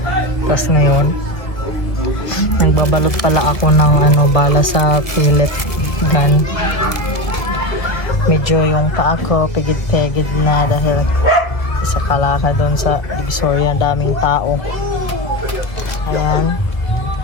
Tapos ngayon, nagbabalot pala ako ng bala sa pellet gun. Medyo yung paa ko pigid-pigid na dahil sa kalaka doon sa Divisoria, daming tao. Ayan.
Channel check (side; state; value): right; late; 1.9 ms